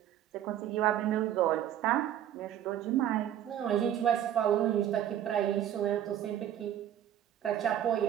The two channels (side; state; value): left; quieter; 11.0 dB